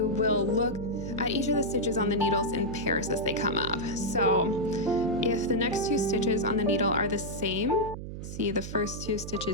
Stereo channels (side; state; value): right; noise; hum, 9 dB below the sound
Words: will look at each of the stitches on the needles in pairs as they come up. So, if the next two stitches on the needle are the same, see the first two